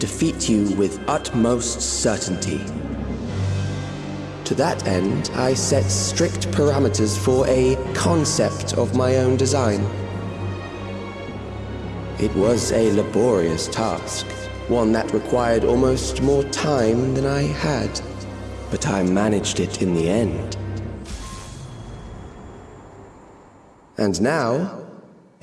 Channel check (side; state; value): both; identical; correlation 1.00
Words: you with utmost certainty. To that end, I set strict parameters for a concept of my own design. It was a laborious task, one that required almost more time than I had, but I managed it in the end. And now,